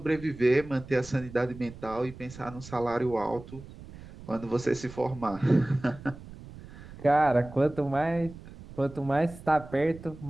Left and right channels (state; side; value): noise; right; rumble, 16 dB below the sound